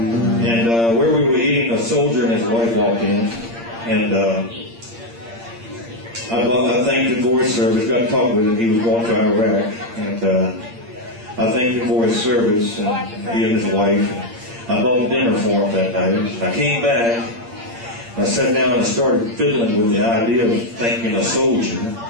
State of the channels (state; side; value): late; left; 8.7 ms